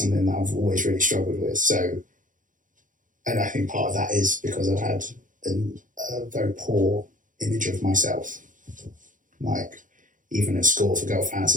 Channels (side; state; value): left; late; 0.38 ms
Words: that I've always really struggled with. So, and I think part of that is because I've had a very poor image of myself. Like, even at school, if a girl